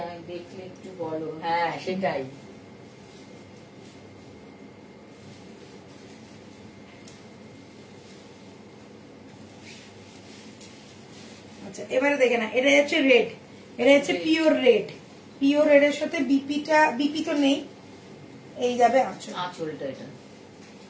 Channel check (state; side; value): identical; both; correlation 1.00